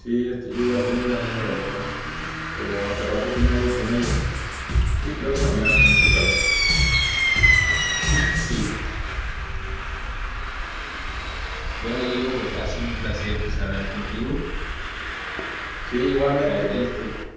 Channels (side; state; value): both; identical; correlation 1.00